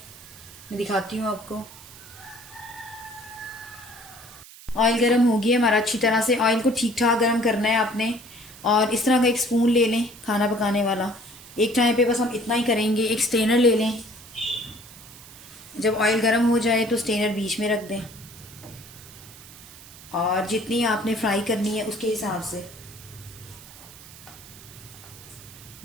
मैं दिखाती हूँ आपको। ऑयल गर्म हो गया हमारा अच्छी तरह से। ऑयल को ठीक ठाक गर्म करना है आपने, और इस तरह का एक स्पून ले लें खाना पकाने वाला। एक टाइम पे बस हम इतना ही करेंगे। एक स्टेनर ले लें, जब ऑयल गर्म हो जाए तो स्टेनर बीच में रख दें, और जितनी आपने फ्राई करनी है उसके हिसाब से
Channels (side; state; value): right; noise; hiss, 19 dB below the sound